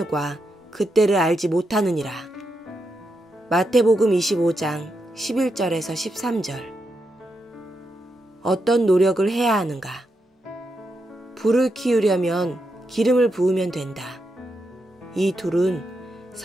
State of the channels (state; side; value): normal; both; correlation 0.84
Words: 그때를 알지 못하느니라. 마태복음 25장 11절에서 13절. 어떤 노력을 해야 하는가? 불을 키우려면 기름을 부으면 된다. 이 둘은